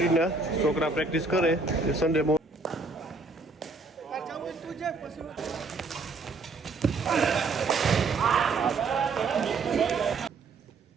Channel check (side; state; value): left; quieter; 3.9 dB